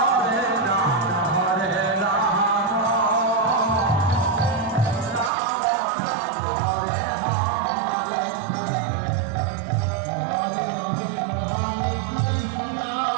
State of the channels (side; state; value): left; drops out; at 5.3 s